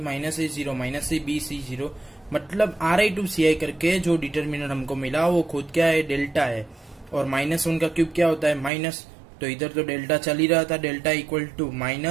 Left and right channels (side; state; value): left; drops out; at 8.7 s